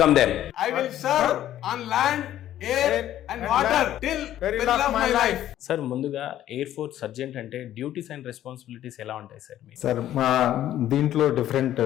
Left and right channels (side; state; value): right; quieter; 12.4 dB